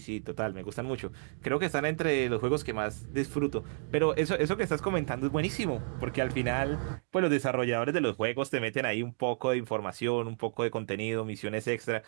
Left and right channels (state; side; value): silent; left; digital silence